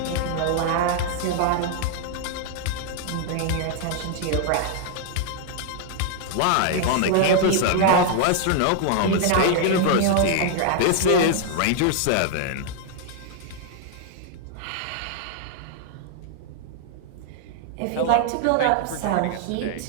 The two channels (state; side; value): different; both; correlation 0.00